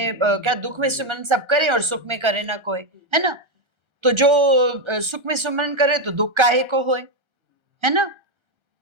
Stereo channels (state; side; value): late; left; 1.3 ms